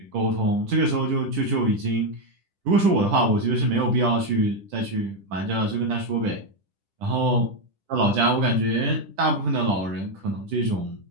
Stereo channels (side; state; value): left; late; 10 ms